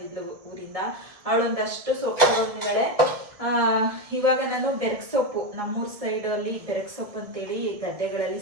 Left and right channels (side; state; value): left; late; 1.7 ms